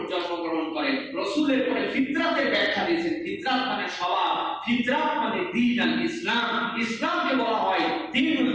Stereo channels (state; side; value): identical; both; correlation 1.00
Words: জন্মগ্রহণ করে। রাসূলের পরে ফিতরাতের ব্যাখ্যা দিয়েছেন, ফিতরাত মানে স্বভাব, ফিতরাত মানে দ্বীন আল ইসলাম। ইসলামকে বলা হয় দ্বীনুল